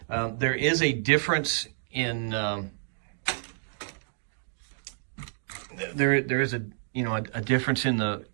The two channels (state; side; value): silent; left; digital silence